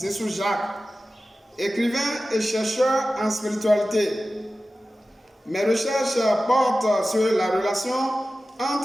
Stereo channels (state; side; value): normal; both; correlation 0.95